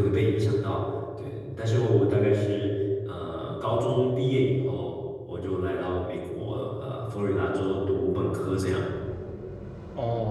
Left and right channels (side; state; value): both; identical; correlation 1.00